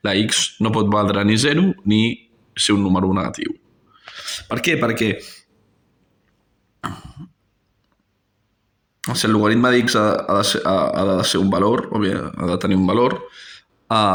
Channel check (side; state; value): both; identical; correlation 1.00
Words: La x no pot valdre ni 0 ni ser un número negatiu. Per què? Perquè si el logaritme d'x ha de ser un valor, o bé ha de tenir un valor,